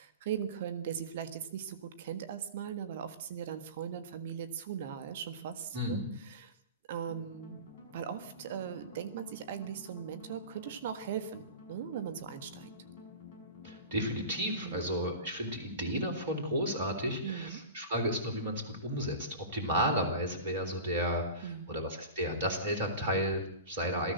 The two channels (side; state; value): both; inverted; correlation -0.33